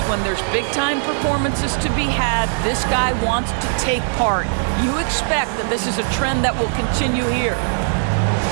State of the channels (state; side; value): silent; left; digital silence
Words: when there's big-time performances to be had, this guy wants to take part. You expect that this is a trend that will continue here.